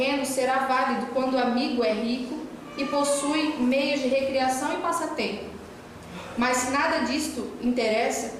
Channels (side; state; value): both; identical; correlation 1.00